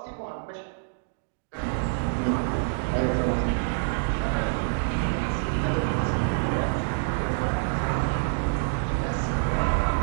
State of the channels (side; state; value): left; silent; digital silence